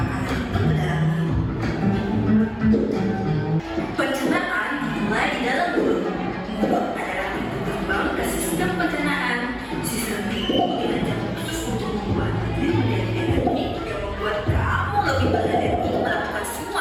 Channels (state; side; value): identical; both; correlation 1.00